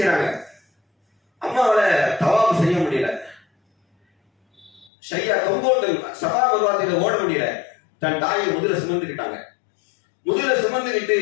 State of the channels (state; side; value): drops out; right; at 4.9 s